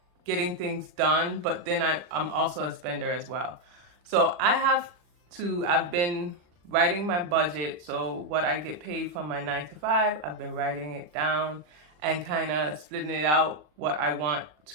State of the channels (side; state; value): left; late; 40 ms